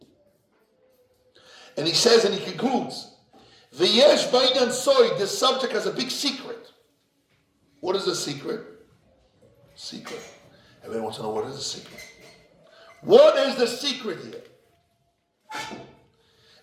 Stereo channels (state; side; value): identical; both; correlation 1.00